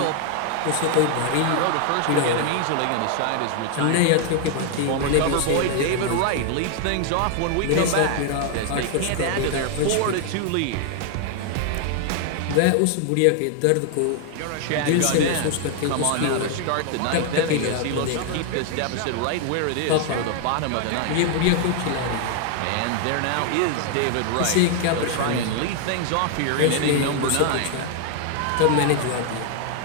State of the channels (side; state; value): both; different; correlation 0.00